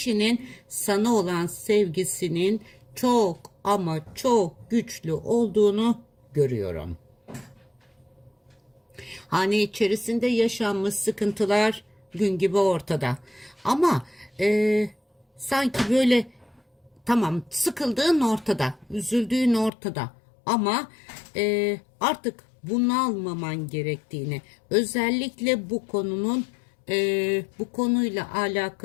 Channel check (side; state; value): right; drops out; at 19.7 s